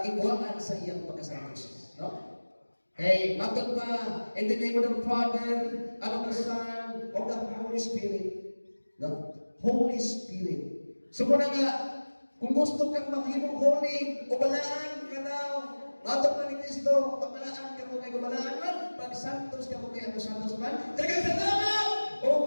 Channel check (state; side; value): inverted; both; correlation -1.00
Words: sa iyang pagkasantos. No? Hey, matag pa, in the name of the Father, and of the Son, of the Holy Spirit. No? Holy Spirit. So, muna nga, kung gusto kang maghimong holy, ubalaan ka na, matag pa ni Kristo, pagbalaan ka mo kay gubalaan man, pag santos ka mo kay ang santos man, dagang sa tama, o